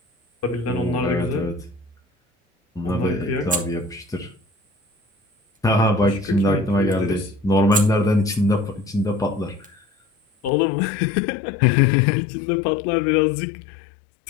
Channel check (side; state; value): right; drops out; at 10.5 s